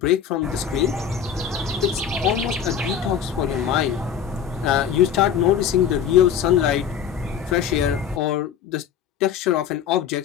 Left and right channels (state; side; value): quieter; right; 8.2 dB